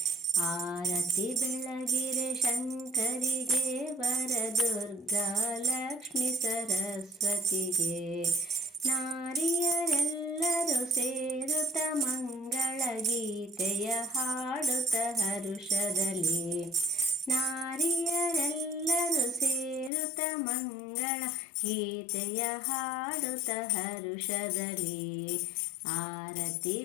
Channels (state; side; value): drops out; right; at 19.9 s